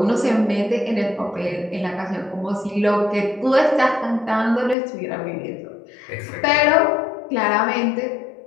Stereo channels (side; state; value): right; drops out; at 4.8 s